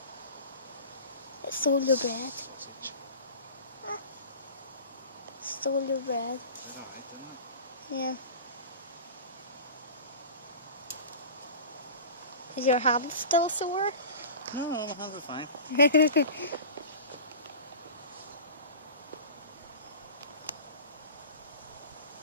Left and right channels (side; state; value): both; inverted; correlation -0.36